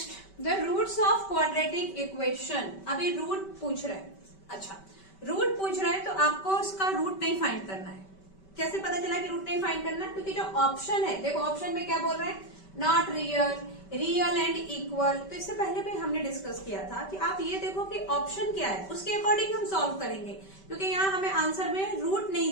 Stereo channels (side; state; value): right; late; 5.2 ms